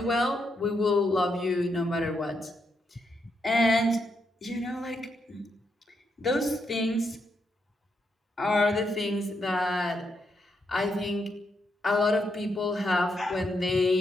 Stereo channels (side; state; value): both; normal; correlation 0.80